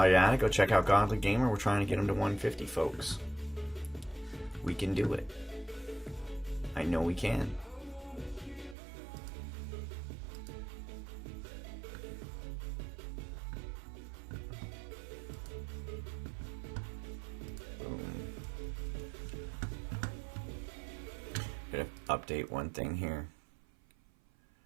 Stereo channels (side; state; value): left; drops out; at 8.8 s